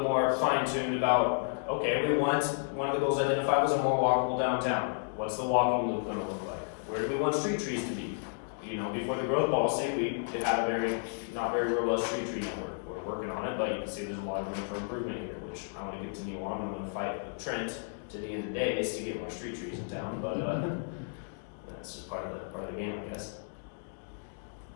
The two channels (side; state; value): right; silent; digital silence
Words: more fine-tuned about, okay, one of the goals identified was a more walkable downtown. What's the walking loop gonna look like? Where do we want street trees to be? You know, before the growth policy, we had a not very robust street tree network. We're working on it, but you can see there's a lot of room for improvement here, which I wanna continue on. I'm gonna fight with Trent to the end of the day to get more street trees in town, but, that's just part of the game, I guess.